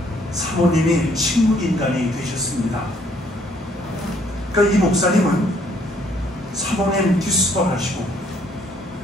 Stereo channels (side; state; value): both; normal; correlation 0.65